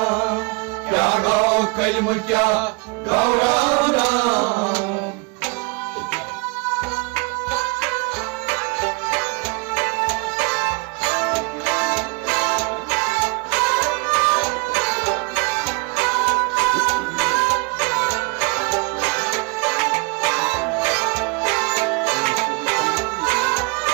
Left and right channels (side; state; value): left; quieter; 29.9 dB